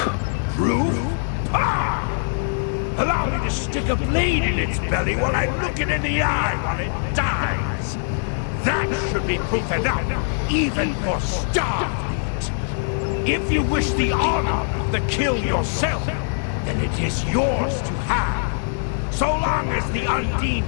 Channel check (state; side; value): silent; right; digital silence